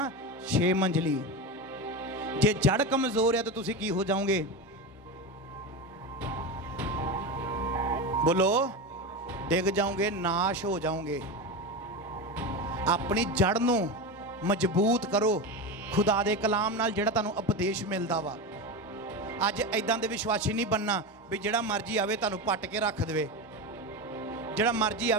6 ਮੰਜ਼ਲੀ। ਜੇ ਜੜ ਕਮਜ਼ੋਰ ਆ ਤਾਂ ਤੁਸੀਂ ਕੀ ਹੋ ਜਾਓਗੇ? ਬੋਲੋ, ਡਿੱਗ ਜਾਓਗੇ, ਨਾਸ਼ ਹੋ ਜਾਓਗੇ। ਆਪਣੀ ਜੜ ਨੂੰ ਮਜ਼ਬੂਤ ਕਰੋ ਖੁਦਾ ਦੇ ਕਲਾਮ ਨਾਲ, ਜਿਹੜਾ ਤੁਹਾਨੂੰ ਉਪਦੇਸ਼ ਮਿਲਦਾ ਵਾ। ਅੱਜ ਐਦਾਂ ਦੇ ਵਿਸ਼ਵਾਸੀ ਨਹੀਂ ਬਣਨਾ ਵੀ ਜਿਹੜਾ ਮਰਜ਼ੀ ਆਵੇ ਤੁਹਾਨੂੰ ਪੱਟ ਕੇ ਰੱਖ ਦੇਵੇ, ਜਿਹੜਾ ਮਰਜ਼ੀ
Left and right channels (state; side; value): normal; both; correlation 0.20